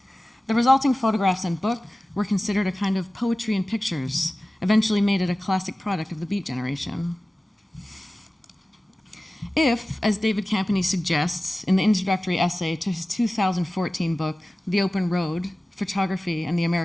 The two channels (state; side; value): normal; both; correlation 0.96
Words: The resulting photographs and book were considered a kind of poetry in pictures, eventually made it a classic product of the Beat generation. If, as David Campany suggests in the introductory essay to his 2014 book, The Open Road, Photography and the